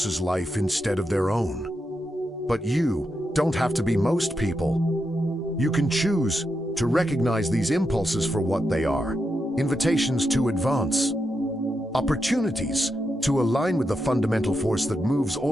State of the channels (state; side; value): normal; both; correlation 0.85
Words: life instead of their own. But you don't have to be most people. You can choose to recognize these impulses for what they are. Invitations to advance. Opportunities to align with the fundamental force that moves